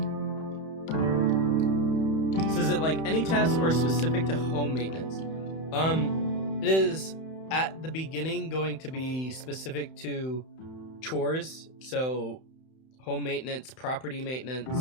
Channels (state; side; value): late; right; 31 ms